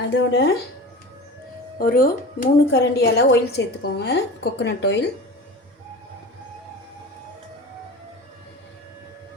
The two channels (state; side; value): normal; both; correlation 0.34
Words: அதோட ஒரு 3 கரண்டி அளவு ஆயில் சேர்த்துக்கோங்க. Coconut oil.